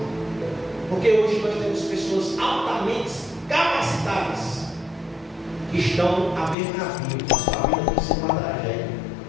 Porque hoje nós temos pessoas altamente capacitadas que estão à beira da vida. Sua vida tem que ser uma tragédia.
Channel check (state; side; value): drops out; right; at 6.6 s